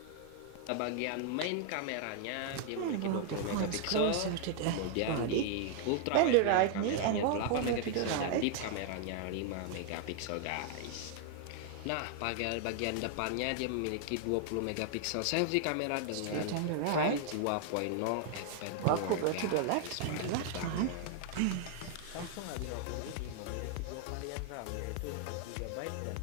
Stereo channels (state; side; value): different; both; correlation 0.00